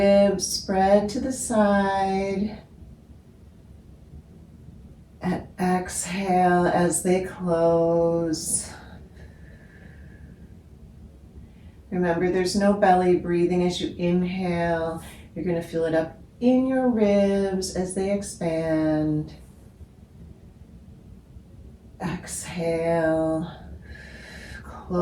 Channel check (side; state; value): both; identical; correlation 1.00